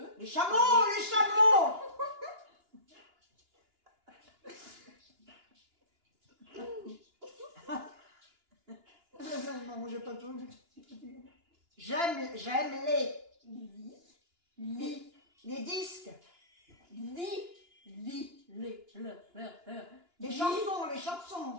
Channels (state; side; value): late; left; 2.9 ms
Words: Les chameaux, les chameaux. Non, j'ai pas tout. J'aime les disques. Les